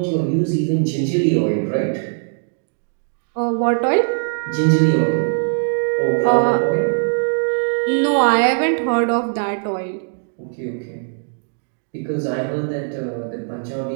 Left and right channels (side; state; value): left; silent; digital silence